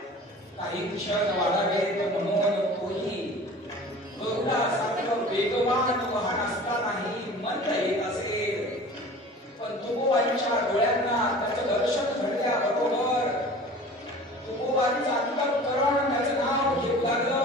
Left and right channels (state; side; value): normal; both; correlation 0.42